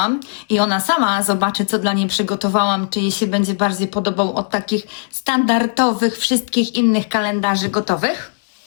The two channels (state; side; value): silent; right; digital silence